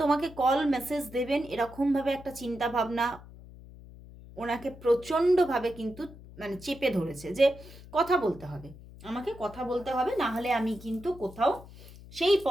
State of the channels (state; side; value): noise; left; hum, 18 dB below the sound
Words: তোমাকে কল মেসেজ দেবেন এরকমভাবে একটা চিন্তা ভাবনা ওনাকে প্রচণ্ডভাবে কিন্তু মানে চেপে ধরেছে, যে কথা বলতে হবে, আমাকে কথা বলতে হবে, না হলে আমি কিন্তু কোথাও সেই